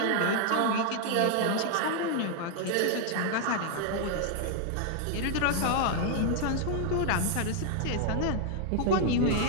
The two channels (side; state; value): both; different; correlation 0.00